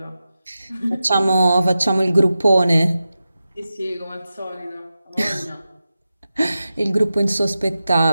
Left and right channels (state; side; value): inverted; both; correlation -0.92